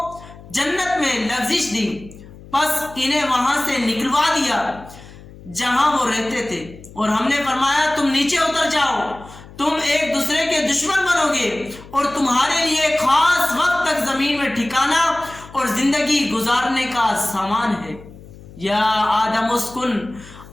جنت میں لغزش دی، پس انہیں وہاں سے نکلوا دیا جہاں وہ رہتے تھے، اور ہم نے فرمایا تم نیچے اتر جاؤ، تم ایک دوسرے کے دشمن بنو گے اور تمہارے لیے خاص وقت تک زمین میں ٹھکانا اور زندگی گزارنے کا سامان ہے۔ یا آدم اسکن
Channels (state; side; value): noise; left; hum, 19 dB below the sound